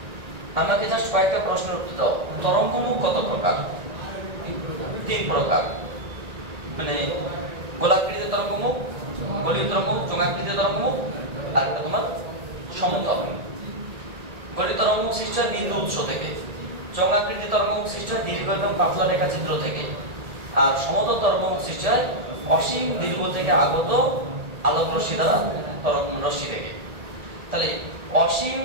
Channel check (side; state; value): left; late; 1.8 ms